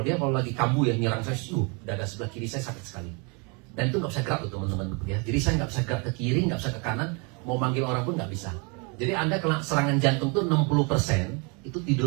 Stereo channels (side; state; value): left; quieter; 32.4 dB